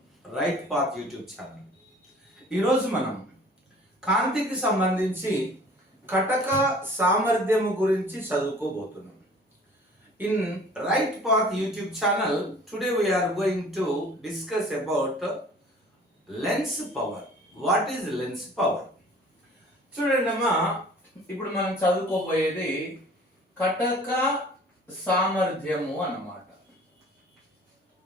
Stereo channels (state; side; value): normal; both; correlation 0.49